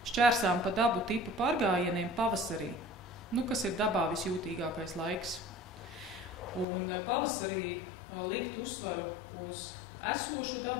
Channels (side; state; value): right; drops out; at 6.7 s